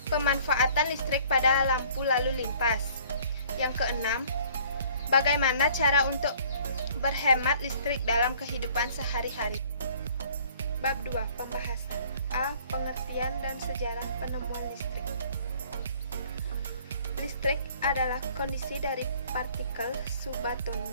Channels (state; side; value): inverted; both; correlation -0.55